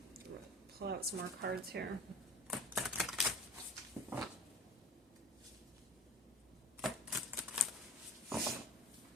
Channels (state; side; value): normal; both; correlation 0.37